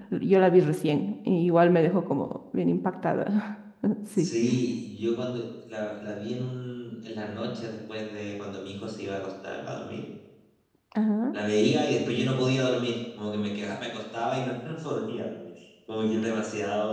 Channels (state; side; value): identical; both; correlation 1.00